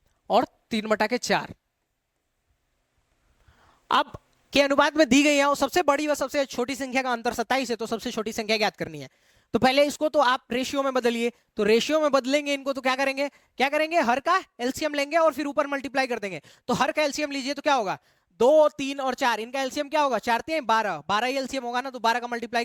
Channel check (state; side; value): identical; both; correlation 1.00